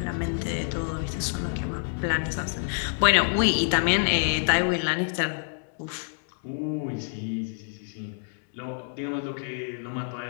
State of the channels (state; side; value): silent; right; 60 dB below the other